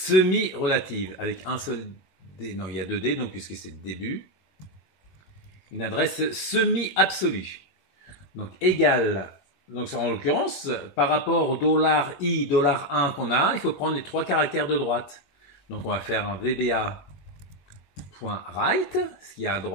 avec un seul D. Non, il y a deux D, donc puisque c'est début. Une adresse semi-absolue. Donc égale. Donc en l'occurrence, par rapport au $i, $1 qu'on a, il faut prendre les trois caractères de droite. Donc on va faire un VBA.right, ce qu'il y a à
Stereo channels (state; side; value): late; right; 21 ms